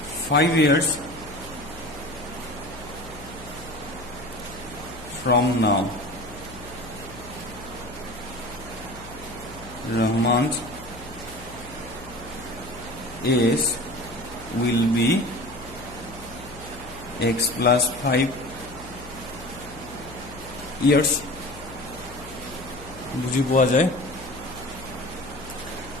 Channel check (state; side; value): noise; left; hum, 16 dB below the sound